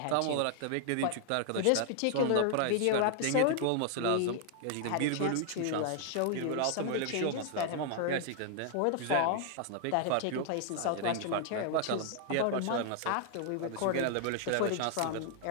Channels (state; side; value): different; both; correlation 0.00